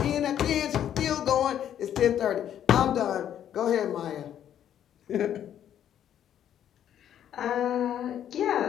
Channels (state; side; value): quieter; right; 10.3 dB